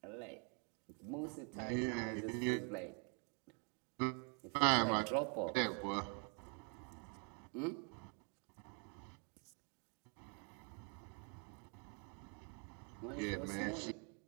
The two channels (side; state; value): left; quieter; 38.1 dB